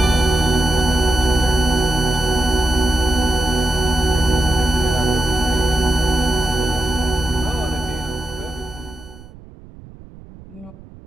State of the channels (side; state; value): right; noise; rumble, 20 dB below the sound